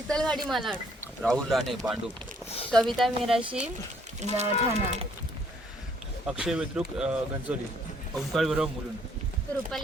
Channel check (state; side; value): normal; both; correlation 0.65